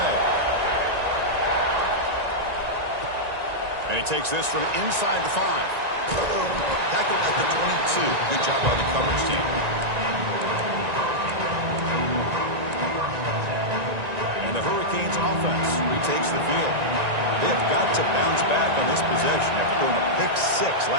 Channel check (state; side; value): late; left; 1.9 ms